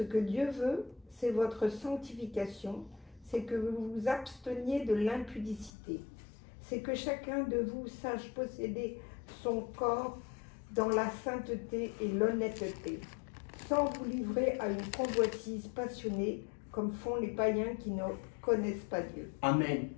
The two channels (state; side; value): drops out; right; at 5.7 s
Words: que Dieu veut, c'est votre sanctification, c'est que vous vous absteniez de l'impudicité. C'est que chacun de vous sache posséder son corps dans la sainteté et l'honnêteté, sans vous livrer à une convoitise passionnée, comme font les païens qui ne connaissent pas Dieu. Amen.